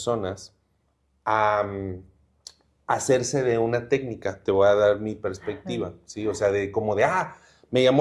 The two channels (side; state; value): both; identical; correlation 1.00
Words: a hacerse de una técnica? Te voy a dar mi perspectiva, ¿sí? O sea, me